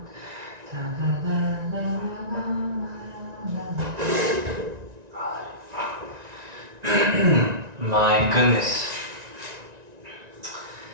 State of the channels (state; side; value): late; left; 1.9 ms